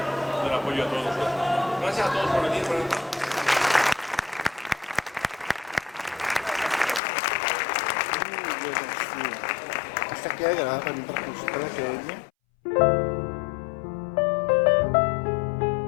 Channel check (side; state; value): right; drops out; at 7.0 s